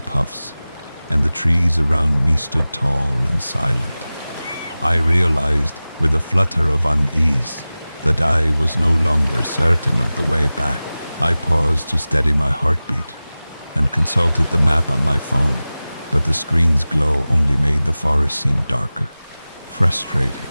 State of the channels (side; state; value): both; inverted; correlation -0.97